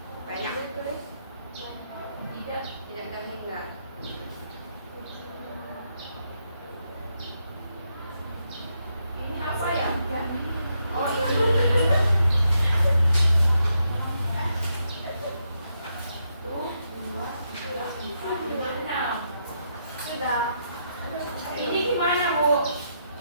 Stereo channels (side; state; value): both; inverted; correlation -0.80